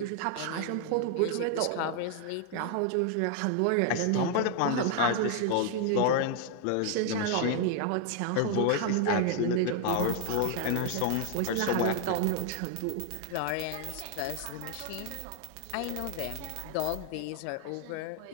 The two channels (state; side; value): different; both; correlation 0.00